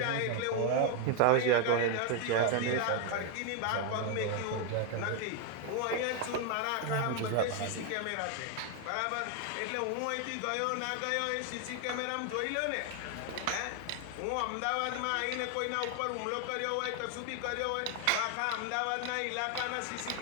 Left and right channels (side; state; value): both; different; correlation 0.00